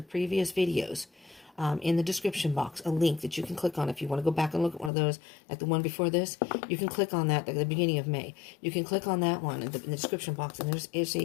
previous videos, in the description box, a link that you can click on if you want to go back and look at one of those, like the one before this. You can click on that at the beginning of May. You can click on that one in the description box, and there's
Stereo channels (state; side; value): drops out; right; at 4.9 s